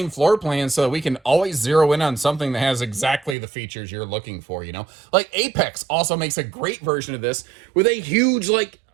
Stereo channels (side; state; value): left; drops out; at 3.4 s